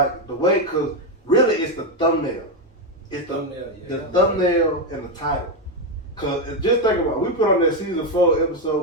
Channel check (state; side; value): normal; both; correlation 0.06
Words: really it's the thumbnail. It's the thumbnail and the title. Cause just think about it, we put on that season 4